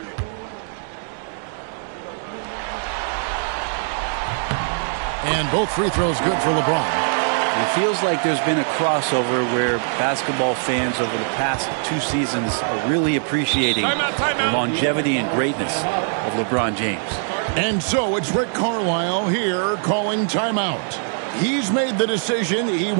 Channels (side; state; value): left; silent; 64 dB below the other